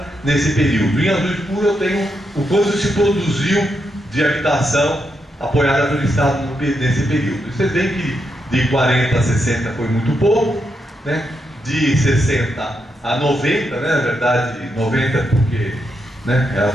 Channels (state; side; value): normal; both; correlation 0.82